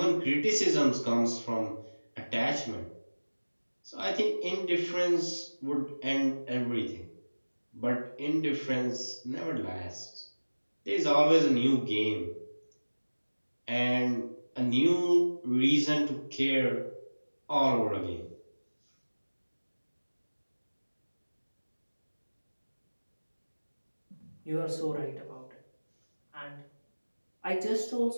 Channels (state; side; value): inverted; both; correlation -1.00